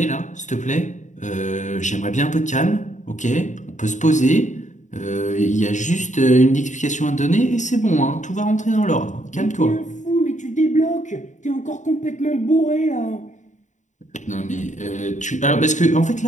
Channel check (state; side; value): late; right; 0.35 ms